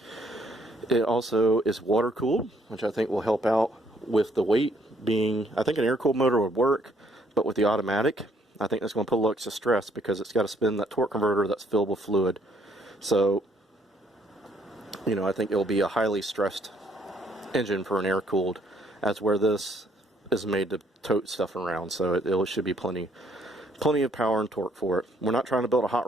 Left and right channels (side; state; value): both; normal; correlation 0.67